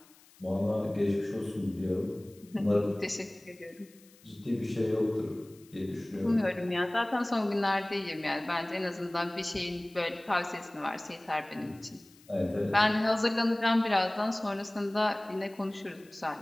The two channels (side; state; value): left; noise; hiss, 27 dB below the sound